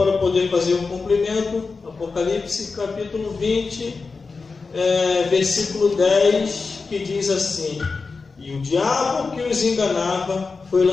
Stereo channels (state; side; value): quieter; right; 4.4 dB